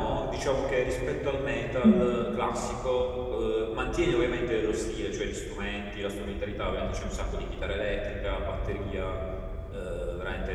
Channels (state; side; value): identical; both; correlation 1.00